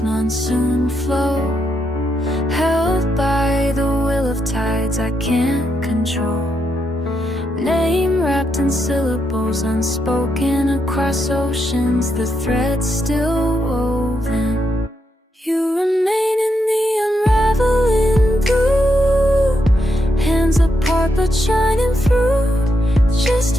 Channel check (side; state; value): both; normal; correlation 0.81